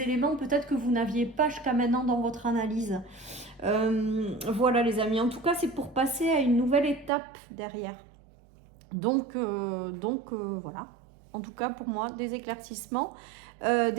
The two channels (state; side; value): drops out; left; at 7.1 s